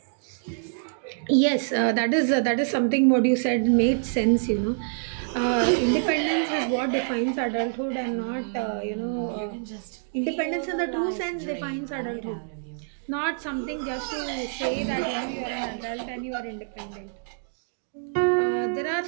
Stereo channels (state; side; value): silent; left; digital silence